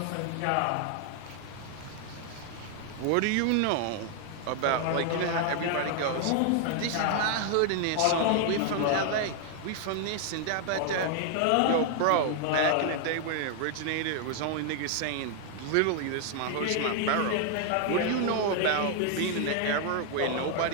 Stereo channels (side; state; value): both; different; correlation 0.00